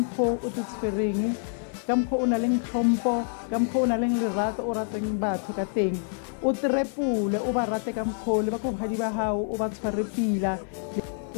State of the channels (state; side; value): silent; right; digital silence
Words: o te tshwereng, ka mkho o na le tlhompo, ka mkho o na le lerato o rateng batho ka teng, o trepule o ba rate ka mkho le ba go hadi ba hao o ba tshware pila.